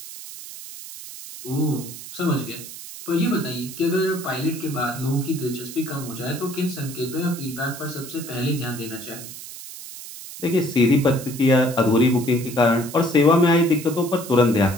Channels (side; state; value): right; noise; hiss, 13 dB below the sound